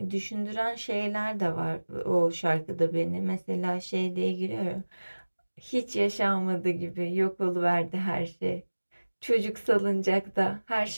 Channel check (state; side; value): inverted; both; correlation -1.00